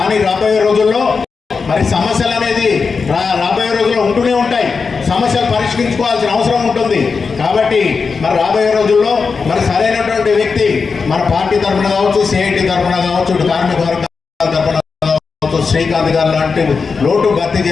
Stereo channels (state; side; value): quieter; right; 5.0 dB